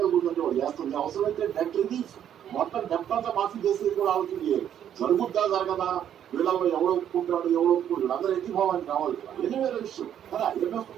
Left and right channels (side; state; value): left; quieter; 9.9 dB